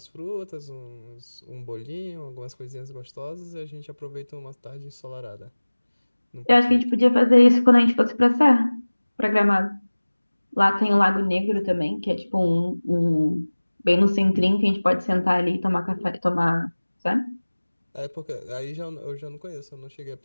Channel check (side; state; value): both; inverted; correlation -1.00